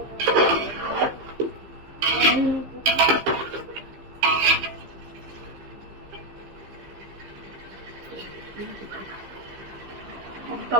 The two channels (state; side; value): late; left; 15 ms